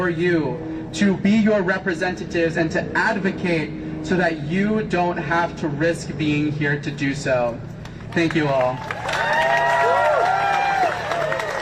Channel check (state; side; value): identical; both; correlation 1.00